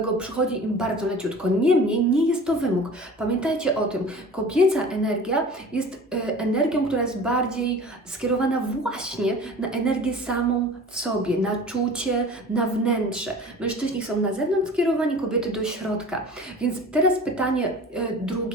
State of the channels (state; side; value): normal; both; correlation 0.41